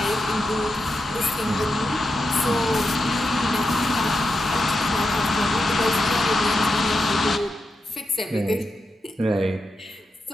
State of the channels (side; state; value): both; normal; correlation 0.87